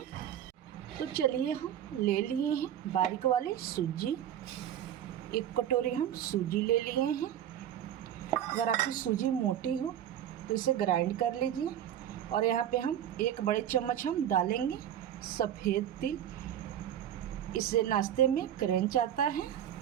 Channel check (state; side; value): quieter; left; 10.6 dB